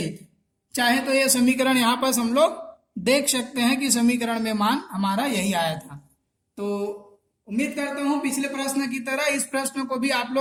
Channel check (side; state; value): both; identical; correlation 1.00